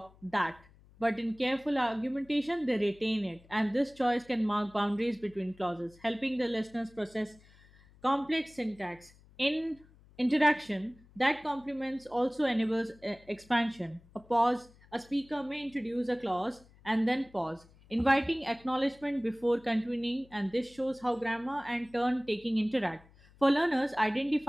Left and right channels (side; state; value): left; noise; hum, 26 dB below the sound